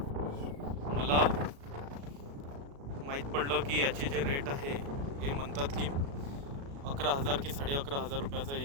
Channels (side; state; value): left; late; 36 ms